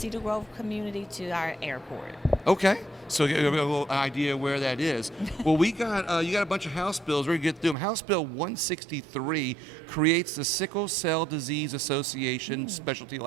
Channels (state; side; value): drops out; left; at 7.8 s